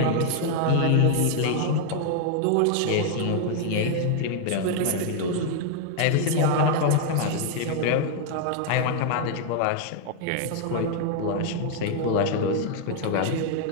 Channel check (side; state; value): both; different; correlation 0.00